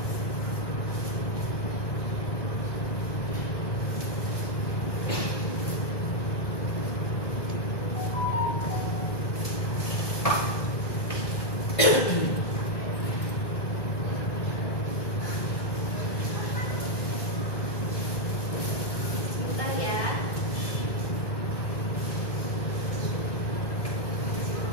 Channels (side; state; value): right; late; 1.2 ms